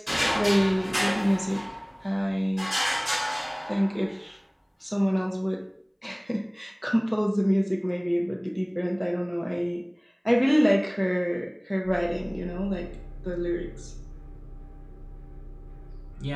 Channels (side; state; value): both; identical; correlation 1.00